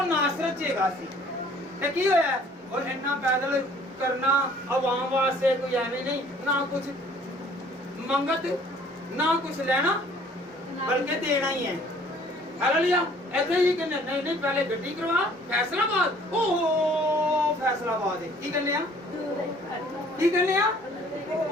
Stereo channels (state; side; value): normal; both; correlation 0.56